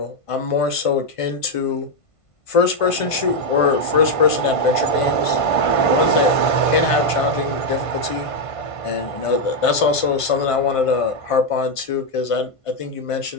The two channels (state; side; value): late; right; 1.5 ms